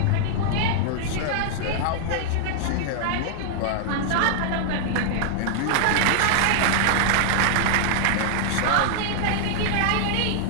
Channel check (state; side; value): different; both; correlation -0.01